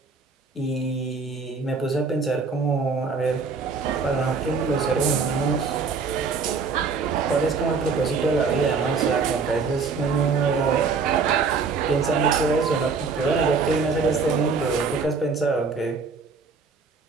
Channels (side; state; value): left; quieter; 4.9 dB